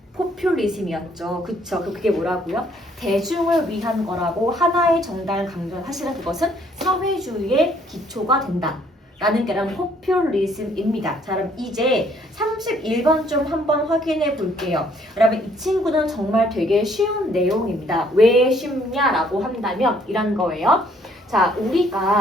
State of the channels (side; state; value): both; normal; correlation 0.64